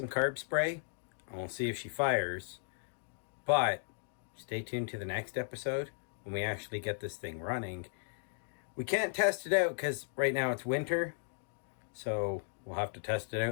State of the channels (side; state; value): right; silent; digital silence